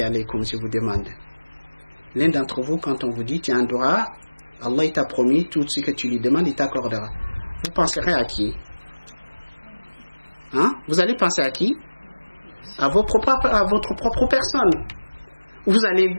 alaykum, je vous demande. L'un d'entre vous, quand on vous dit, tu as un dua, Allah il t'a promis, tout ce que tu lui demandes, il t'accordera. Vous penserez à qui? Vous allez penser à qui? À votre propre personne. Vous allez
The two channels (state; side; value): inverted; both; correlation -1.00